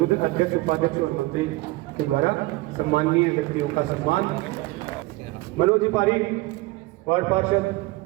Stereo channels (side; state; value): left; quieter; 20.7 dB